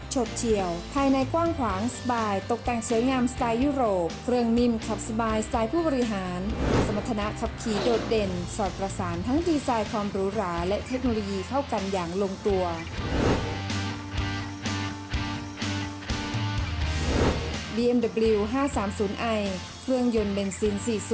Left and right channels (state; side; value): identical; both; correlation 1.00